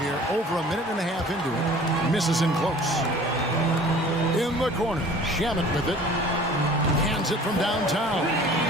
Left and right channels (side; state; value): both; normal; correlation 0.47